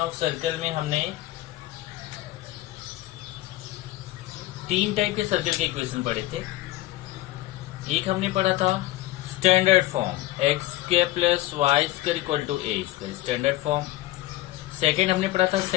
सर्कल में हमने तीन टाइप के सर्कल के इक्वेशन पढ़े थे। एक हमने पढ़ा था standard form X square plus Y square equal to A square, standard form. Second हमने पढ़ा था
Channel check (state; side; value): quieter; right; 16.6 dB